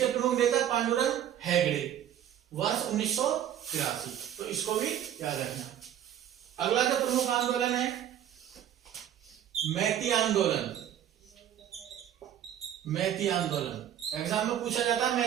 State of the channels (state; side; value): quieter; left; 10.5 dB